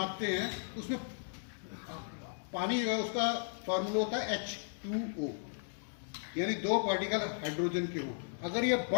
हैं, उसमें पानी जो है उसका फॉर्मूला होता है H2O, यानी 2 पार्टिकल हाइड्रोजन के हो। अगर ये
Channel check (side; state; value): right; silent; digital silence